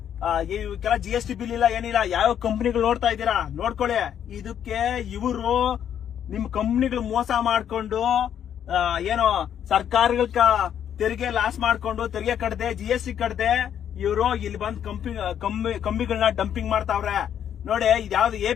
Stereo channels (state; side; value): quieter; right; 9.4 dB